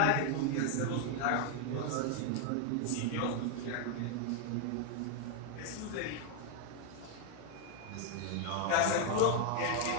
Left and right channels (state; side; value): different; both; correlation 0.00